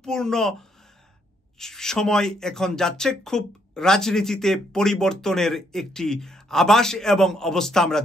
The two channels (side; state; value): both; normal; correlation 0.72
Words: সময় এখন যাচ্ছে। খুব রাজনীতিতে পরিবর্তনের একটি আভাস এবং অবস্থা আমরা